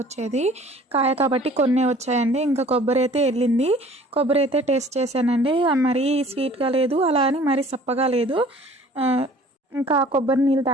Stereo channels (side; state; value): both; normal; correlation 0.50